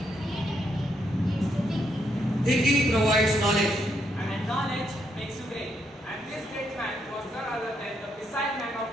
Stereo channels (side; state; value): both; normal; correlation 0.76